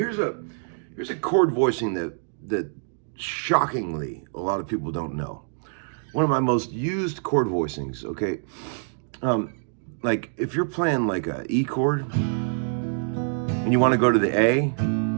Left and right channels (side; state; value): left; silent; 61 dB below the other